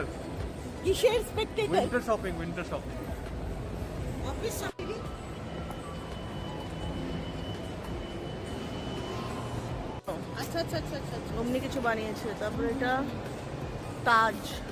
কিসের Spectator? Winter shopping, winter shopping. Office shopping. আচ্ছা আচ্ছা আচ্ছা আচ্ছা আচ্ছা। অমনি কিছু বানিয়েছে। তারপরে এটা তাজ।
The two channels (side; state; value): both; identical; correlation 1.00